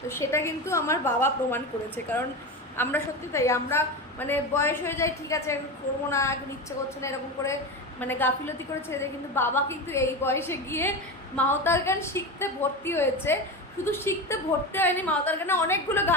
তো সেটা কিন্তু আমার বাবা প্রমাণ করেছে। কারণ আমরা সত্যি তাই, আমরা মানে বয়স হয়ে যায়, ঠিক আছে করবো না, এখন ইচ্ছে করছে না, এরকম করে মানে গাফিলতি করে ছেড়ে দেয়। কিন্তু বাবা কিন্তু এই বয়সে গিয়ে মাওতার গান শিখতে ভর্তি হয়েছে। শুধু শিখতে ভর্তি হয়নি, মাওতার গানে অনেকগুলো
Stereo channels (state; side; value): normal; both; correlation 0.22